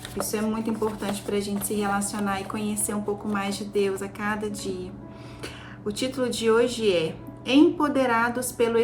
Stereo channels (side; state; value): both; identical; correlation 1.00